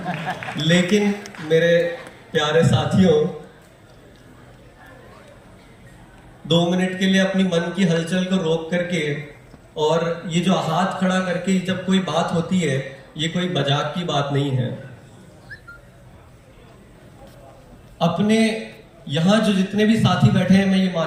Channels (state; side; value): identical; both; correlation 1.00